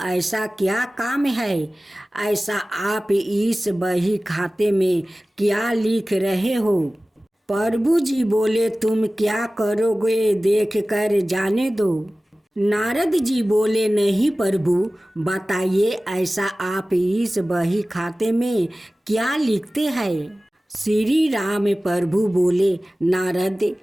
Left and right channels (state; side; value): normal; both; correlation 0.97